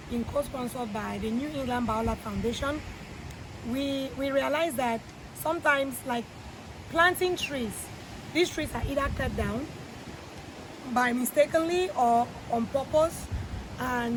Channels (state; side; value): identical; both; correlation 1.00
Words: been co-sponsored by the New England Biolab Foundation, we realize that sometimes, like planting trees, these trees are either cut down by mistakenly or on purpose,